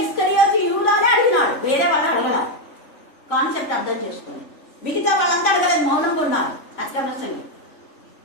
ఇస్కరియోతు యూదానే అడిగినాడు, వేరే వాళ్ళు అడగల. కాన్సెప్ట్ అర్థం చేసుకోండి. మిగతా వాళ్ళంతా అడగలేదు, మౌనంగా ఉన్నారు. అత్క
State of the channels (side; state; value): right; late; 3.5 ms